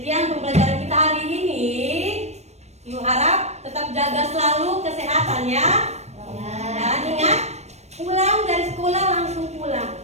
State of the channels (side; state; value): left; late; 0.32 ms